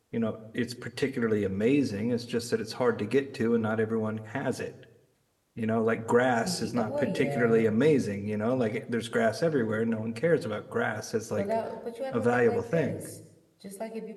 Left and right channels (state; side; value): identical; both; correlation 1.00